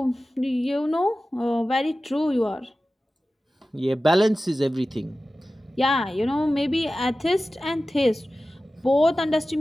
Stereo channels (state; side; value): normal; both; correlation 0.95